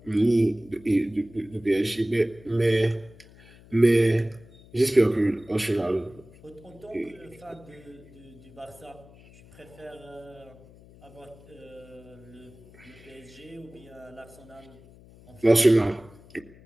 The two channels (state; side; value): noise; left; hum, 23 dB below the sound